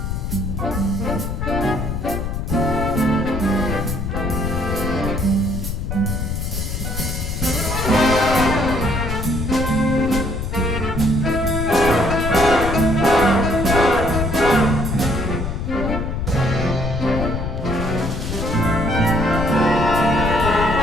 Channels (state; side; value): noise; left; rumble, 3 dB below the sound